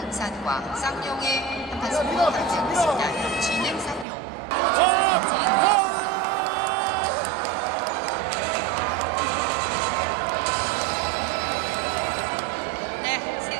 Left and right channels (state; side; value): drops out; left; at 4.0 s